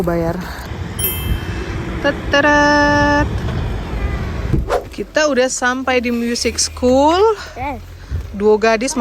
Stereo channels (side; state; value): both; identical; correlation 1.00